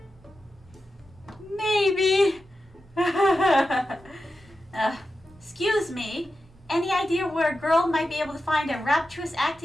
Maybe. Excuse me. Any idea where a girl might be able to find a rapturous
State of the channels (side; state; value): both; normal; correlation 0.91